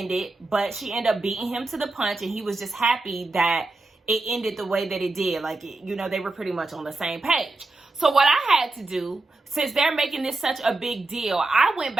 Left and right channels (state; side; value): quieter; left; 3.2 dB